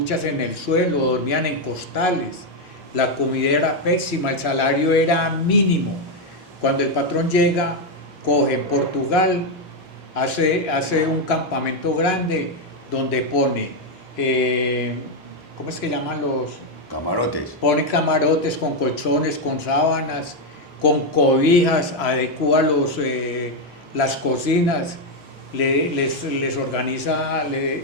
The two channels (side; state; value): both; normal; correlation 0.04